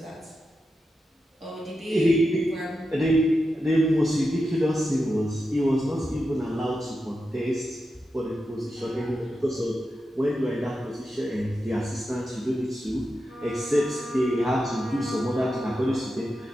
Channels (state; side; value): normal; both; correlation 0.89